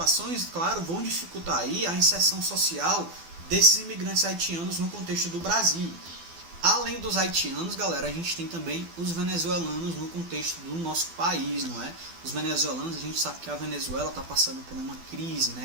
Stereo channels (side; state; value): left; late; 12 ms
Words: claro, vão dificultar aí a inserção social desses imigrantes haitianos no contexto do Brasil. Além dos haitianos, galera, a gente tem também os venezuelanos no contexto do nosso país, não é? Os venezuelanos, a gente sabe que a Venezuela está passando por uma crise,